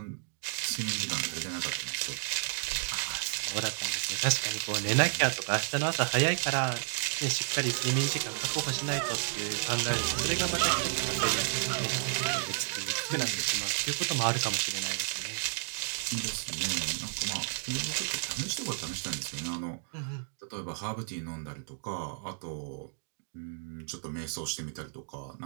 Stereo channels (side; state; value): left; silent; digital silence